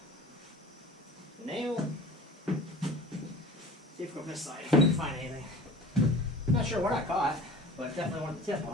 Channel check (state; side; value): normal; both; correlation 0.40